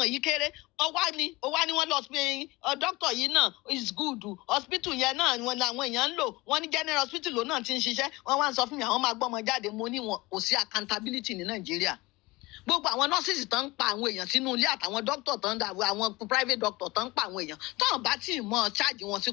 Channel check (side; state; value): right; quieter; 22.1 dB